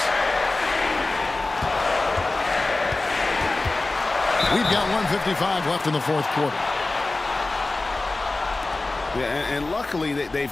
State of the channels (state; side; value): quieter; right; 3.2 dB